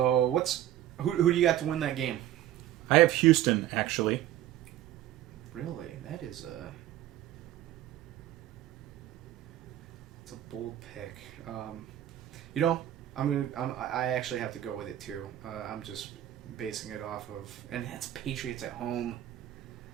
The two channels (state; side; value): quieter; left; 12.9 dB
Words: who do you got to win that game? I have Houston, actually. Really? That is it's a bold pick. I actually have to go with it too. I'm just basing it off of, and that's Patriots at home.